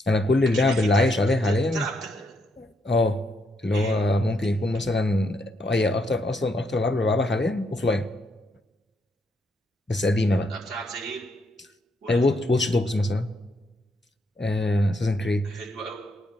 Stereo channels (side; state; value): both; normal; correlation 0.76